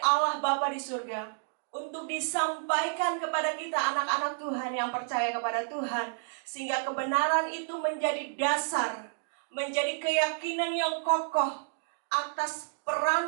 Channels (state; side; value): silent; left; digital silence